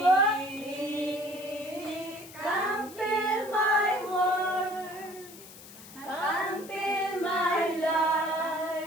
Come fill my world, come fill my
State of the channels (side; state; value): left; noise; hiss, 18 dB below the sound